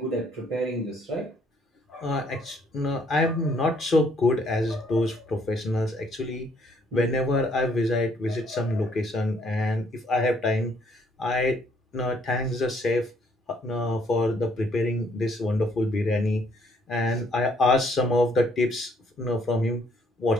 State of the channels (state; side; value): normal; both; correlation 0.66